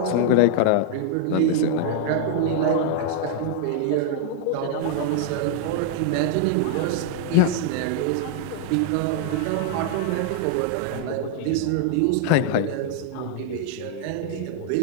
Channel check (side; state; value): both; different; correlation 0.00